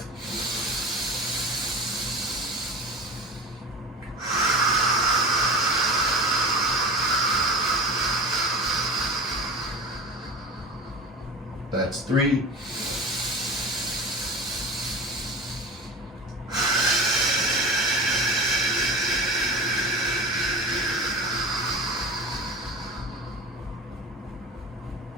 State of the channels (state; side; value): normal; both; correlation 0.33